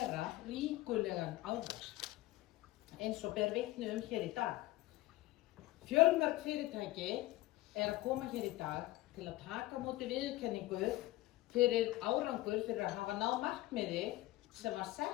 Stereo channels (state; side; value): quieter; right; 17.7 dB